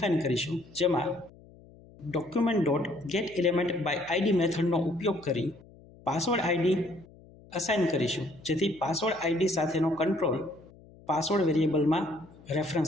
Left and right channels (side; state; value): left; noise; hum, 23 dB below the sound